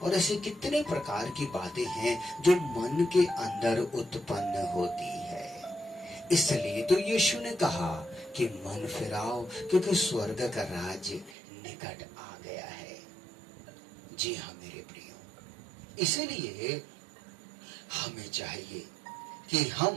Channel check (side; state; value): left; drops out; at 11.4 s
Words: और ऐसे कितने प्रकार की बातें हैं जो मन के अंदर उत्पन्न होती है। इसलिए तो यीशु ने कहा कि मन फिराओ क्योंकि स्वर्ग का राज निकट आ गया है। जी हाँ मेरे प्रियो, इसलिए हमें चाहिए कि